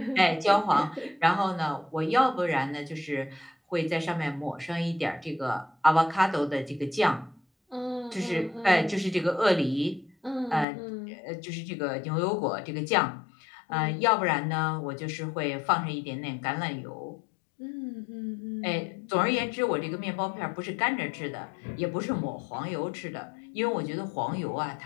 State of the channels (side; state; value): right; drops out; at 10.7 s